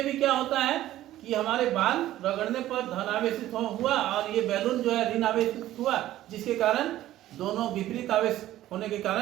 भी क्या होता है कि हमारे बाल रगड़ने पर धन आवेशित हुआ और ये बैलून जो है ऋण आवेशित हुआ, जिसके कारण दोनों विपरीत आवेश होने के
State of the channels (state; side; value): quieter; left; 14.1 dB